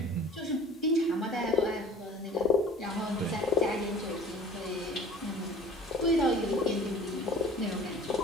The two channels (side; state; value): both; normal; correlation 0.45